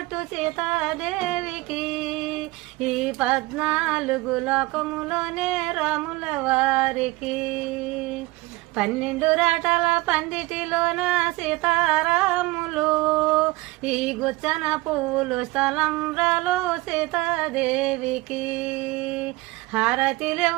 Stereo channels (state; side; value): quieter; left; 21.1 dB